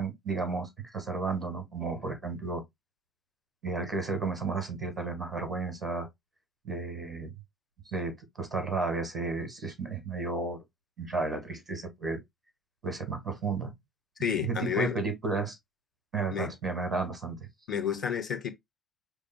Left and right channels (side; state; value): both; normal; correlation 0.43